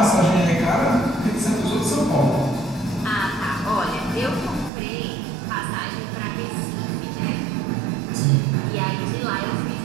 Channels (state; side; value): drops out; left; at 4.7 s